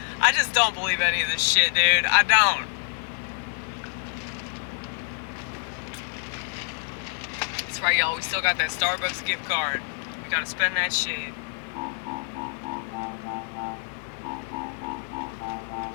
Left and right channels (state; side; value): silent; right; 60 dB below the other